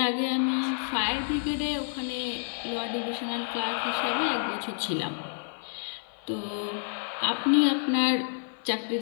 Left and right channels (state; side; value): silent; right; 59 dB below the other